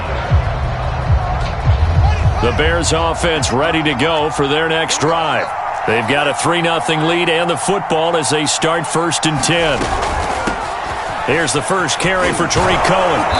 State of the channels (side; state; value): both; identical; correlation 1.00